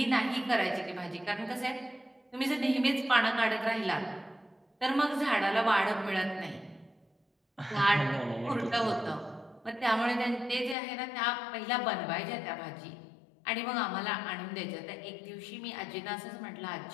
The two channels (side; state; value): right; drops out; at 10.8 s